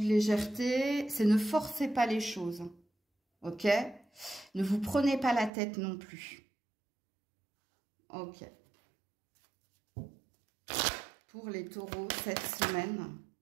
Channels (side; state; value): left; drops out; at 5.5 s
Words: de légèreté, c'est ne forcez pas les choses. Ok? Ne vous prenez pas la tête non plus. Ok. Pour les taureaux, cette semaine.